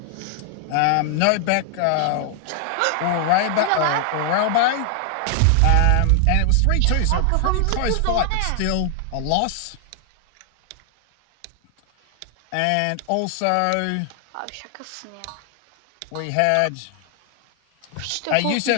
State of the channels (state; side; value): different; both; correlation 0.00